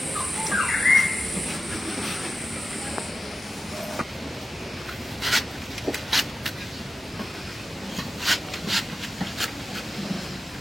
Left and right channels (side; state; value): both; normal; correlation 0.92